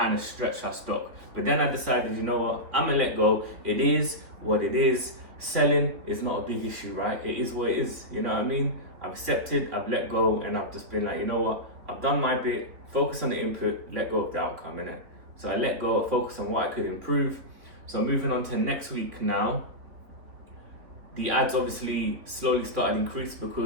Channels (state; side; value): late; left; 3.8 ms